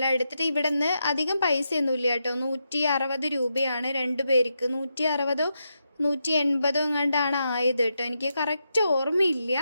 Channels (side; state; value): both; inverted; correlation -0.85